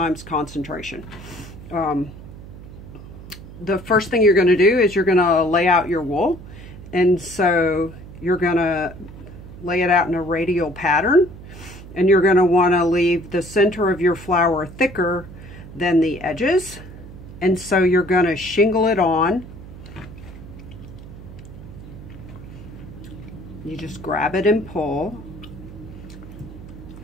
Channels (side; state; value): right; noise; hum, 15 dB below the sound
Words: concentration. The first thing you're going to do is you're going to lay out your wool, and so you're going to lay it out in a radial pattern, and you're going to want to leave the center of your flower thicker than the edges, and so you're going to shingle it on. You just grab it and pull.